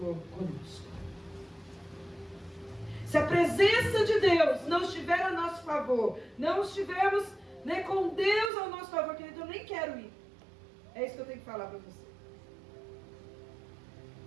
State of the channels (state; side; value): drops out; left; at 8.5 s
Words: conosco. Se a presença de Deus não estiver a nosso favor, não estivermos, né, com Deus ao nosso favor, querido, eu nem quero ir. É isso que eu tenho que falar para você.